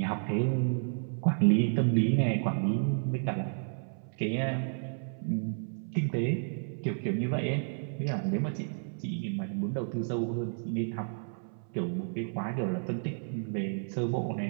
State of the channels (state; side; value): silent; left; 57 dB below the other